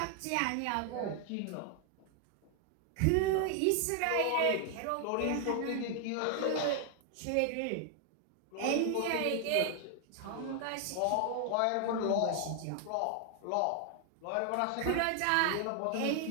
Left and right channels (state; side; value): different; both; correlation 0.00